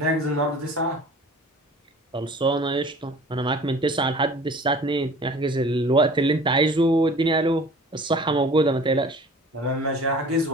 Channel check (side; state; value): both; normal; correlation 0.45